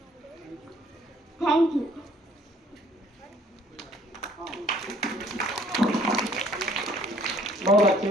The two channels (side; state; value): both; normal; correlation 0.59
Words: thank you. बहुत